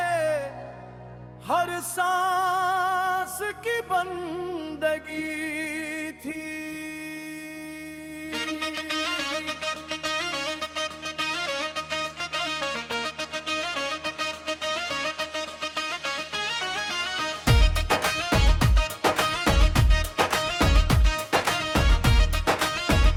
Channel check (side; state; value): both; identical; correlation 1.00